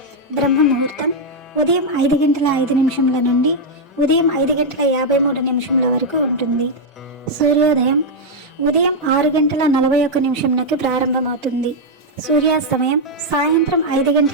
బ్రహ్మ ముహూర్తం ఉదయం 5:05 నుండి ఉదయం 5:53 వరకు ఉంటుంది. సూర్యోదయం ఉదయం 6:41 ప్రారంభమవుతుంది. సూర్యాస్తమయం సాయంత్రం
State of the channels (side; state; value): both; normal; correlation -0.02